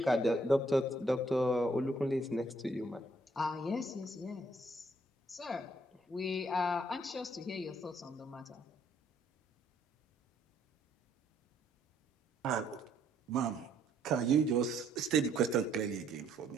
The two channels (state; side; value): normal; both; correlation 0.67